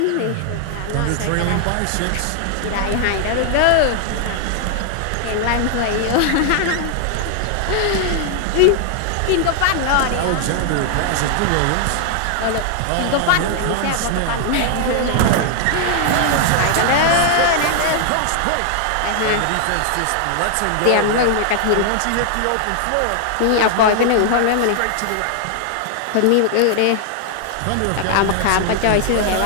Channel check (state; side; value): different; both; correlation 0.00